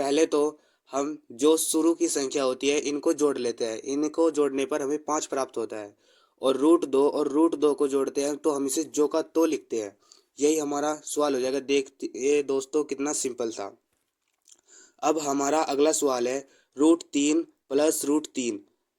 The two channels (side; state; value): both; identical; correlation 1.00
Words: तो हम जो शुरू की संख्या होती है इनको जोड़ लेते हैं। इनको जोड़ने पर हमें 5 प्राप्त होता है। और रूट दो को जोड़ते हैं तो हम इसे जो का तो लिखते हैं। यही हमारा सवाल हो जाएगा। देखते ये दोस्तों कितना सिंपल था। अब हमारा अगला सवाल है, √3 + √3